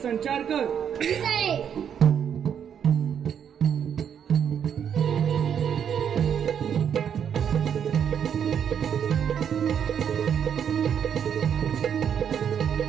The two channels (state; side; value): quieter; left; 8.3 dB